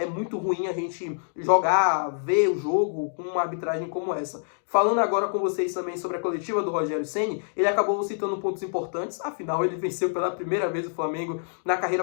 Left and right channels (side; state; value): right; silent; digital silence